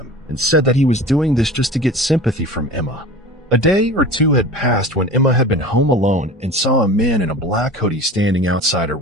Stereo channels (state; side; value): normal; both; correlation 0.37